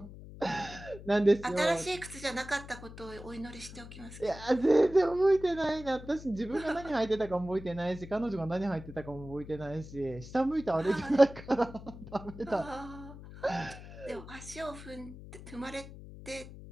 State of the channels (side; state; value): left; noise; hum, 14 dB below the sound